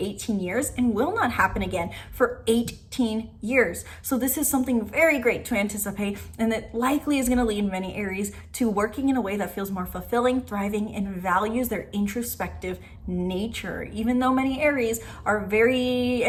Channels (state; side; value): identical; both; correlation 1.00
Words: years and will not happen again for 18 years. So this is something very great to anticipate, and that likely is going to lead many Aries to working in a way that feels more fulfilling, thriving, and values their introspective nature. Even though many Aries are very